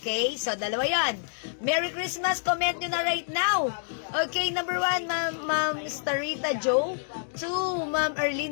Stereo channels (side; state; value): right; silent; digital silence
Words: So, 2 yan. Merry Christmas. Comment nyo na right now. Okay, number 1, Ma'am Starita Joe. 2, Ma'am